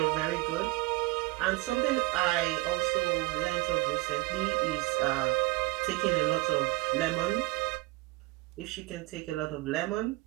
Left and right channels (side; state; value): left; quieter; 21.3 dB